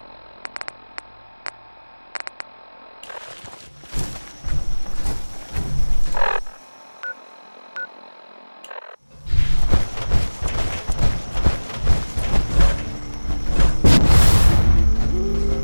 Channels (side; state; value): both; inverted; correlation -1.00